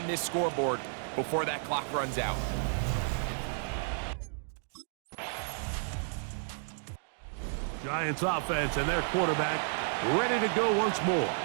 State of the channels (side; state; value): left; silent; digital silence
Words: this scoreboard before that clock runs out. Giants offense and their quarterback ready to go once more.